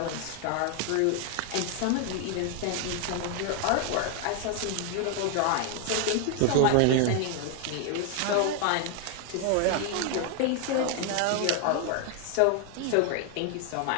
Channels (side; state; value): both; different; correlation 0.00